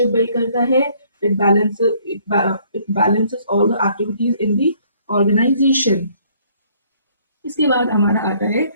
build करता है। It balances all the activities in the organisation. इसके बाद हमारा आता है,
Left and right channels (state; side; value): inverted; both; correlation -0.62